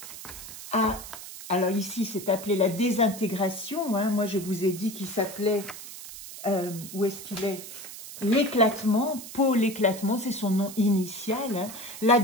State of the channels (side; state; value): right; noise; hiss, 12 dB below the sound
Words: alors ici, c'est appelé la désintégration. Hein. Moi, je vous ai dit qu'il s'appelait, où est-ce qu'il est? L'éclatement, Paul l'éclatement, c'est son nom initial. Hein. La